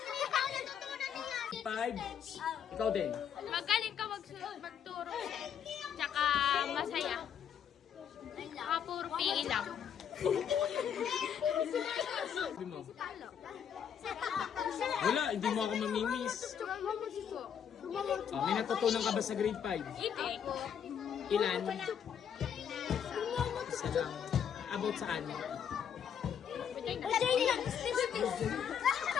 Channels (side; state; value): right; quieter; 8.3 dB